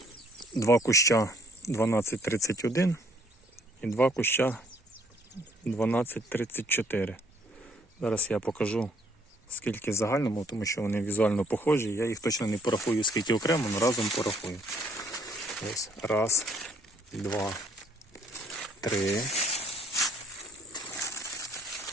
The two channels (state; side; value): normal; both; correlation 0.64